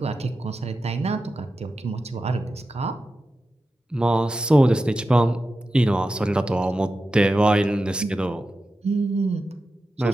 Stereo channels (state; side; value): normal; both; correlation 0.92